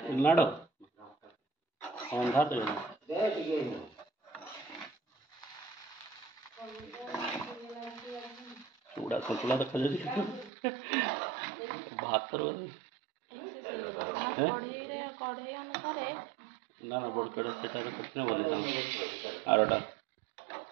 लाडो अंधा दे चूड़ा सतुला देखा जाए भात कढ़ई अनुसार ना ना बड़ कड़े सेटा कितने बोले आरोटा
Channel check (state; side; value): drops out; left; at 10.5 s